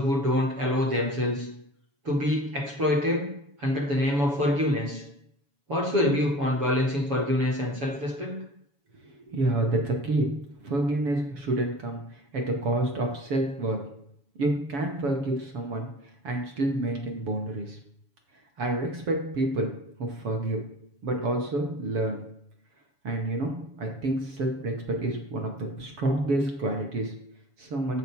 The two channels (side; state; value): left; late; 7.1 ms